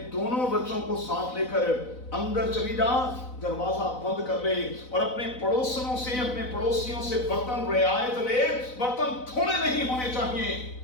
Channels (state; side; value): late; right; 4.0 ms